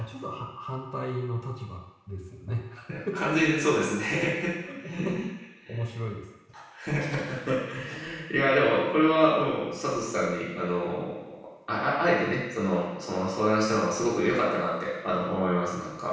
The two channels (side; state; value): both; identical; correlation 1.00